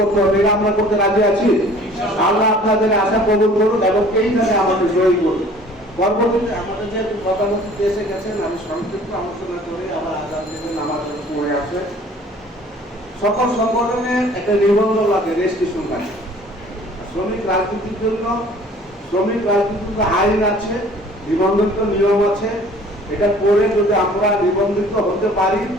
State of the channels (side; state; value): both; normal; correlation 0.51